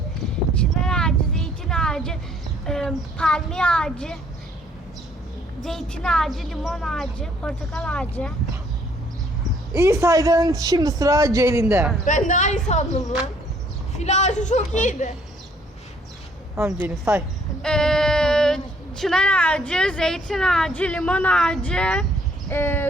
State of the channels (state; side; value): normal; both; correlation 0.63